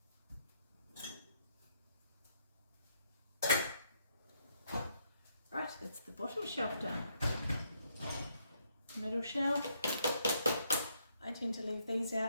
Right, that's the bottom shelf done. Middle shelf. I tend to leave these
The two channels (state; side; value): inverted; both; correlation -0.73